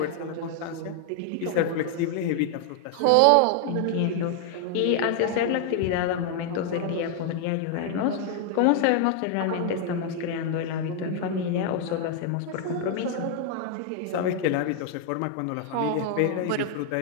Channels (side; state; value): both; different; correlation 0.00